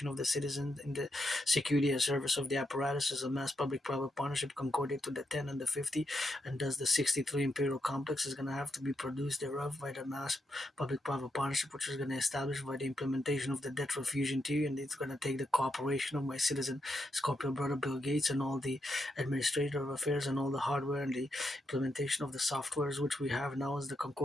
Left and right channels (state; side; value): normal; both; correlation 0.82